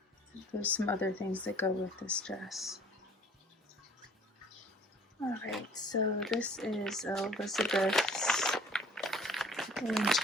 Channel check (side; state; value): both; normal; correlation 0.52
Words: There's some other things that go with this dress. Alright, so this is Elizabeth's